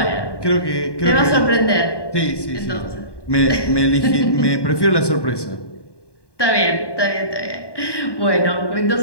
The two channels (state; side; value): late; right; 1.1 ms